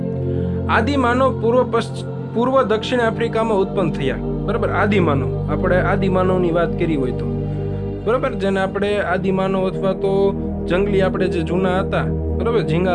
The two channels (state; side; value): identical; both; correlation 1.00